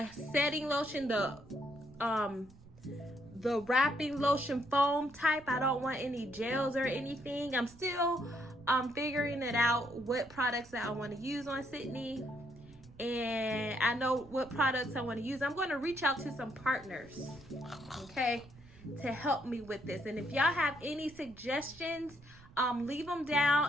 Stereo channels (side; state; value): right; noise; rumble, 22 dB below the sound